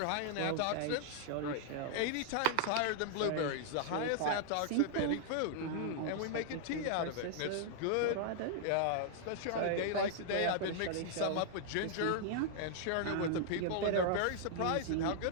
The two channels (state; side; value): different; both; correlation -0.01